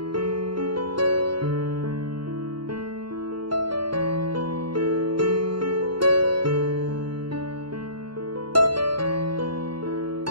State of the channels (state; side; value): late; left; 0.73 ms